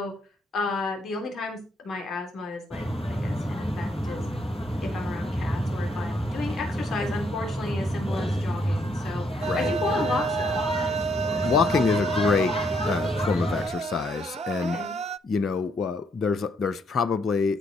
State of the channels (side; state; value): both; normal; correlation 0.73